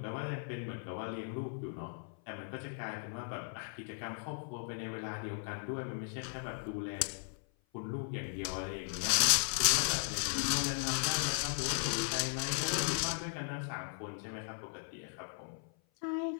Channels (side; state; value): right; silent; 53 dB below the other